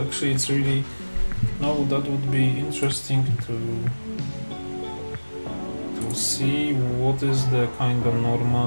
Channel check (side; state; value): both; inverted; correlation -1.00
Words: Actually, it's really that would be interesting to see what is the kind of